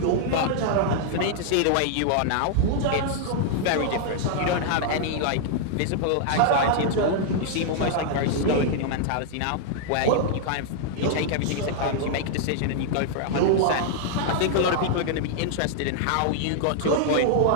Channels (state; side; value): different; both; correlation -0.01